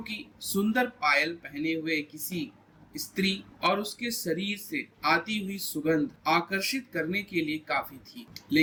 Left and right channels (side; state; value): both; identical; correlation 1.00